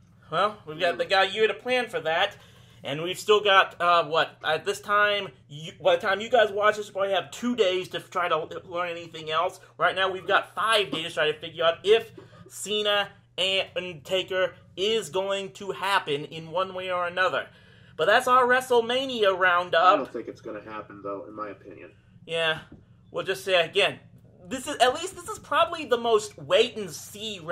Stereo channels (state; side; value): identical; both; correlation 1.00